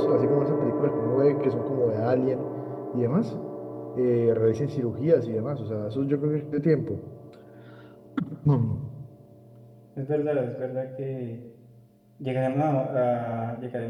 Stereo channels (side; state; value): both; identical; correlation 1.00